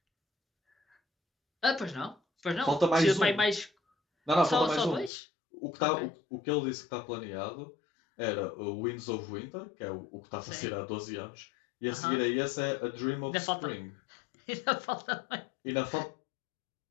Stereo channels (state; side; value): drops out; right; at 5.1 s